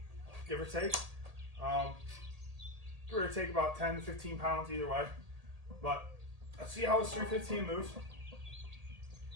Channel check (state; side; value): late; left; 1.8 ms